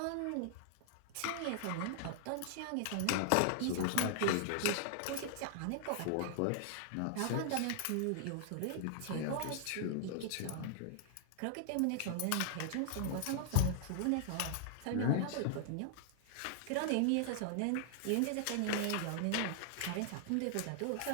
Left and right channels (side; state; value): both; different; correlation 0.00